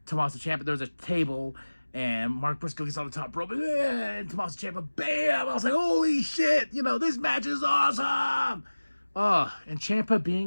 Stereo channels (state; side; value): inverted; both; correlation -1.00